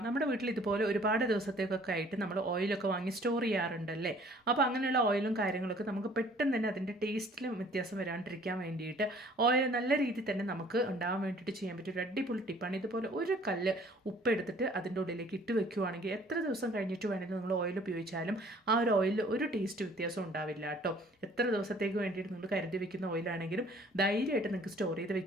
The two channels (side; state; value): both; normal; correlation 0.55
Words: നമ്മുടെ വീട്ടിൽ ഇതുപോലെ ഒരുപാട് ദിവസത്തേക്കൊക്കെ ആയിട്ട് നമ്മൾ ഓയിലൊക്കെ വാങ്ങി സ്റ്റോർ ചെയ്യാറുണ്ടല്ലേ. അപ്പോൾ അങ്ങനെയുള്ള ഓയിലും കാര്യങ്ങളൊക്കെ നമുക്ക് പെട്ടെന്ന് തന്നെ അതിൻ്റെ ടേസ്റ്റിലും വ്യത്യാസം വരാണ്ടിരിക്കാൻ വേണ്ടിയിട്ട് ഓയിൽ നല്ല രീതിയിൽ തന്നെ നമുക്ക് ഉണ്ടാകാൻ വേണ്ടിയിട്ട് ചെയ്യാൻ പറ്റിയ ഒരു അടിപൊളി ടിപ്പാണ്. ഇതുപോലെ ഒരു കല്ല് ഉപ്പ് എടുത്തിട്ട് അതിൻ്റെ ഉള്ളിലേക്ക് ഇട്ട് വെക്കുകയാണെങ്കിൽ എത്ര ദിവസം കഴിഞ്ഞിട്ട് വേണമെങ്കിൽ നിങ്ങൾ ഓയിൽ ഉപയോഗിച്ചാലും ആ ഒരു ഓയിലിൽ ഒരു ടേസ്റ്റ് വ്യത്യാസം ഉണ്ടാവില്ല കേട്ടോ. എത്ര ദിവസത്തേക്ക് വേണ്ടിയിട്ട് നിങ്ങൾ കരുതി വെക്കുന്ന ഓയിലാണെങ്കിലും ധൈര്യമായിട്ട് നിങ്ങൾക്ക് സ്റ്റോർ ചെയ്ത്